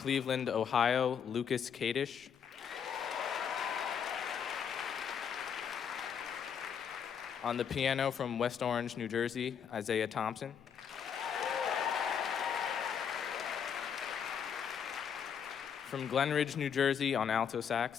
Ohio, Lucas Kadish. On the piano from West Orange, New Jersey, Isaiah Thompson. From Glenridge, New Jersey, on alto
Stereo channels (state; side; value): quieter; right; 7.7 dB